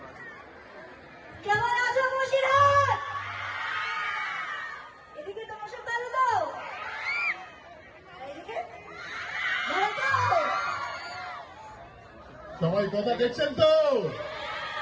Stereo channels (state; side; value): identical; both; correlation 1.00